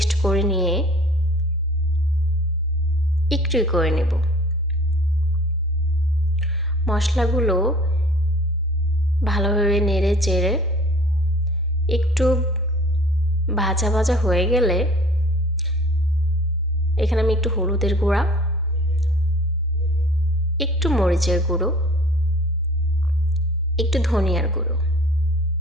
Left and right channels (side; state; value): both; normal; correlation 0.49